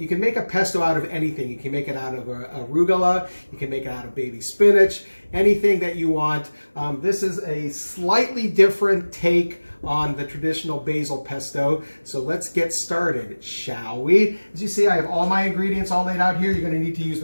can make a pesto out of anything. You can make it out of arugula, you can make it out of baby spinach, anything that you want. This is a slightly different take on the traditional basil pesto. So let's get started, shall we? As you see, I have all my ingredients all laid out here. You're going to need to use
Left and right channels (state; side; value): inverted; both; correlation -1.00